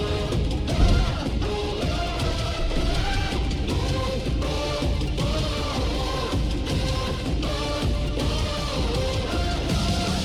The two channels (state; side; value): identical; both; correlation 1.00